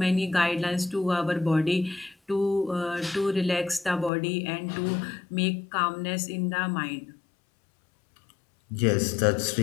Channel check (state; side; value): drops out; right; at 4.1 s